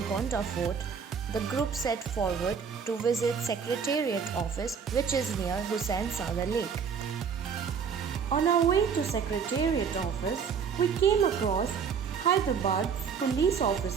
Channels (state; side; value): quieter; left; 6.5 dB